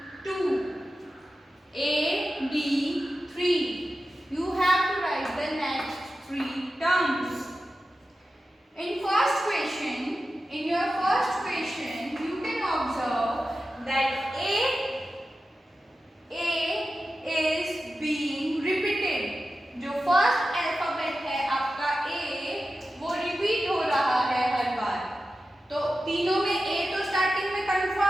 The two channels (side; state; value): both; normal; correlation 0.93